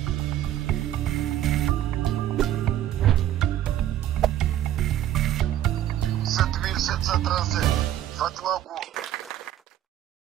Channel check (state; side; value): quieter; left; 12.2 dB